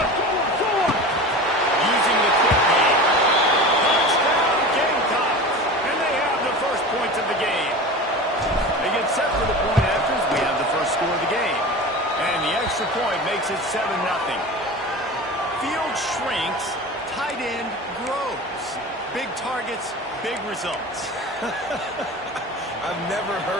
Using the quick game. Touchdown Gamecocks. And they have the first points of the game. They get set for the point afters. We have the first score of the game. And the extra point makes it 7-0. Field shrinks, tight end grows. Big targets, big results. I've never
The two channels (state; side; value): normal; both; correlation 0.32